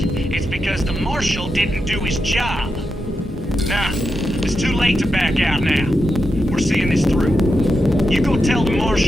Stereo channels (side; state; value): both; normal; correlation 0.87